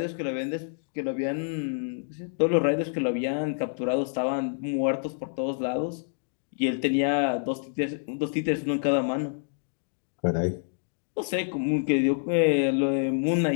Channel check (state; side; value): silent; right; digital silence